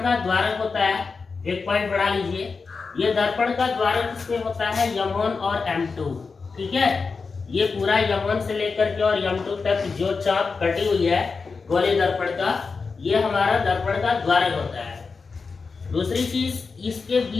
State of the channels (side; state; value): right; quieter; 4.7 dB